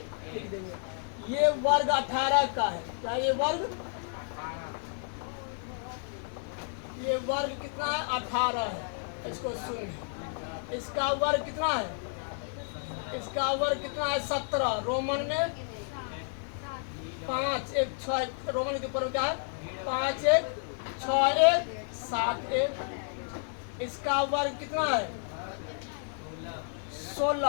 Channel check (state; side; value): silent; right; 57 dB below the other